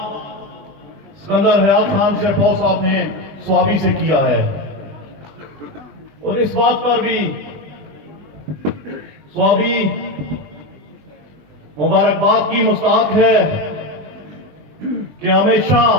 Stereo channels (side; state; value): left; late; 20 ms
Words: सिकंदर हयात खान शेरपौ साहब ने स्वाबी से किया है और इस बात पर भी स्वाबी मुबारकबाद की मुस्ताहक है कि हमेशा